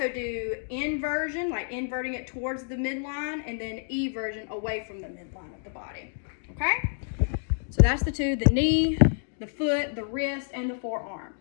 do inversion, like inverting it towards the midline, and then eversion away from the midline of the body. Okay? So that's the 2, the knee, the foot, the wrist, and the forearm.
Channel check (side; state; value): right; silent; digital silence